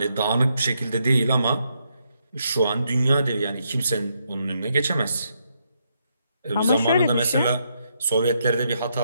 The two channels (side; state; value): both; inverted; correlation -0.78